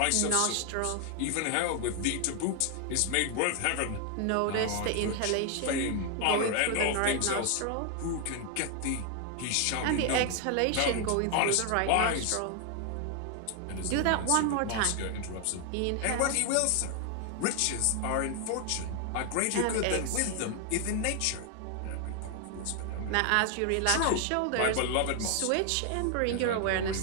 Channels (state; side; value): different; both; correlation 0.00